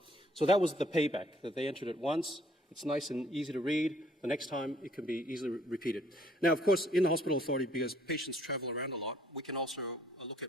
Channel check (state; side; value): normal; both; correlation 0.62